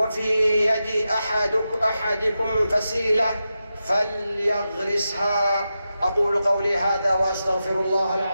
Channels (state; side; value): inverted; both; correlation -0.90